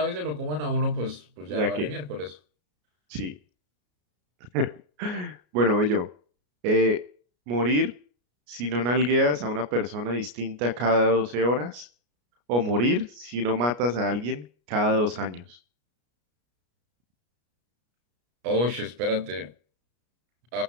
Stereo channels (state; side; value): late; left; 33 ms